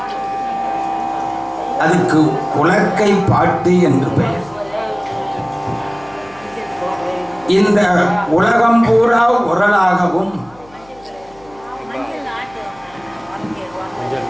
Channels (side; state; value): left; noise; hum, 26 dB below the sound